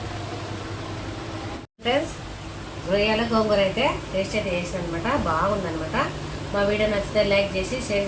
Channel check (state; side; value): identical; both; correlation 1.00